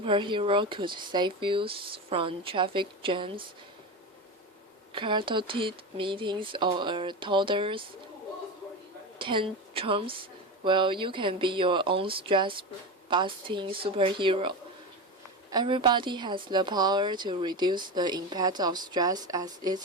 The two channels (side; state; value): both; normal; correlation 0.21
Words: could save you from traffic jams, chaotic meetings, or a toddler's tantrums? Well, you can be your own stress-busting superhero. Everybody has the power to reduce the impact of stress as it's